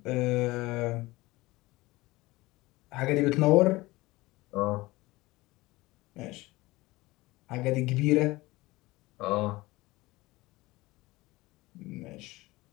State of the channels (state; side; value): quieter; right; 20.5 dB